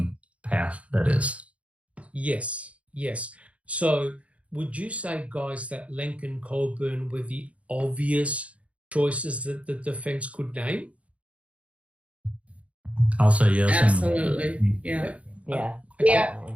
path, that is. Yes. So would you say, guys, that Lincoln Colburn were the obvious choices that the defense could name? I'll say yes. Absolutely. Yeah.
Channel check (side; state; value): left; late; 0.064 ms